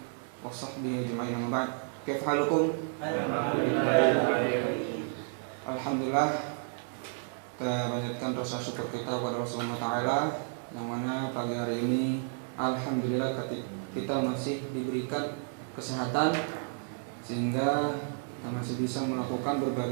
وصحبه أجمعين أما بعد كيف حالكم؟ Alhamdulillah, kita panjatkan rasa syukur kita kepada Rasulullah Ta'ala, yang mana pagi hari ini alhamdulillah kita masih diberikan kesehatan sehingga kita masih bisa melakukan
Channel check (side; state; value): left; silent; 57 dB below the other